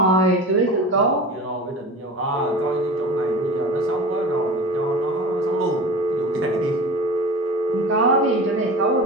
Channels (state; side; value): normal; both; correlation 0.34